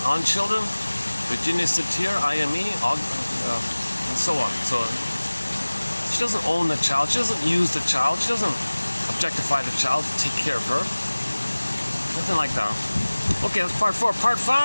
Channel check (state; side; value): inverted; both; correlation -1.00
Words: on children, Virginia Satir, IME, and so on. So she doesn't own the child, she doesn't use the child, she doesn't objectify the child to take care of her. Nothing like that. Okay, that's part 4. Part